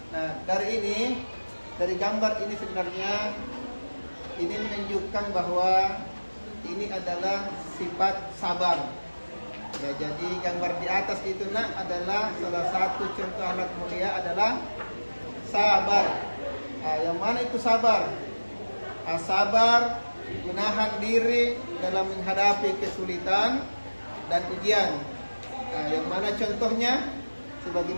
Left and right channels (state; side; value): inverted; both; correlation -1.00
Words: dari gambar ini sebenarnya ini menunjukkan bahwa ini adalah sifat sabar. Ya, jadi gambar di atas itu adalah salah satu contoh akhlak mulia adalah sabar. Yang mana itu sabar? Sabar menahan diri dalam menghadapi kesulitan dan ujian. Yang mana contohnya